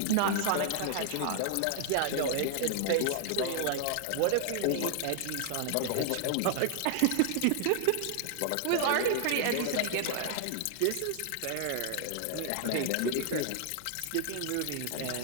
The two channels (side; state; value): both; different; correlation 0.00